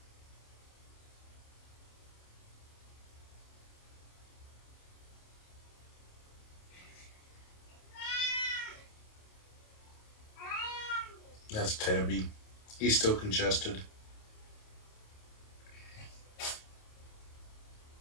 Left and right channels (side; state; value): right; late; 28 ms